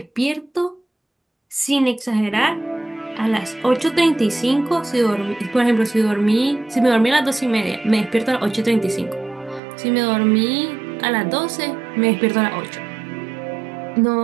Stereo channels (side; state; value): left; drops out; at 9.6 s